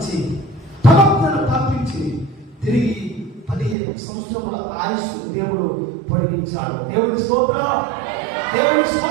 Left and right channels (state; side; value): drops out; left; at 3.8 s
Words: ప్రవక్తను పంపించి తిరిగి 15 సంవత్సరముల ఆయుష్ దేవుడు పొడిగించాడు. దేవుని స్తోత్రం, దేవుని